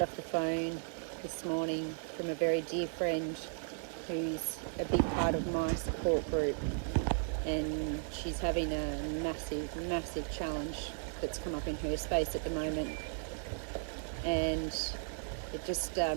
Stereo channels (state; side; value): silent; left; 54 dB below the other